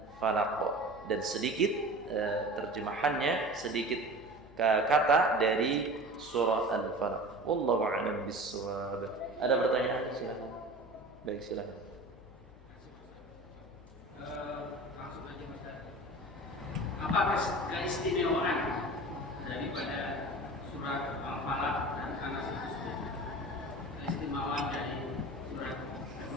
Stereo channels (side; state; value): left; noise; hum, 22 dB below the sound